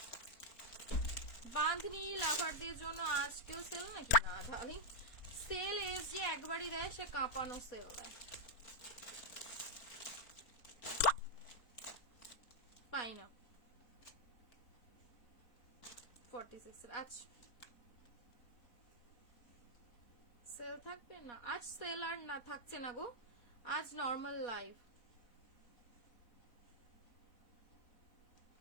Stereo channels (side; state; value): right; late; 4.4 ms